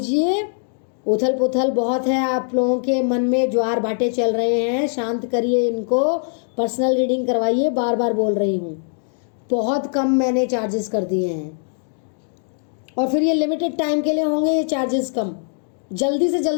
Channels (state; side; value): silent; right; 65 dB below the other